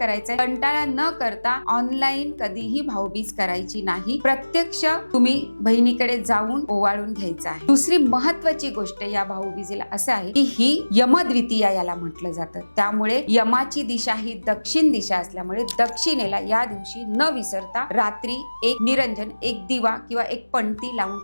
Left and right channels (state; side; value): inverted; both; correlation -1.00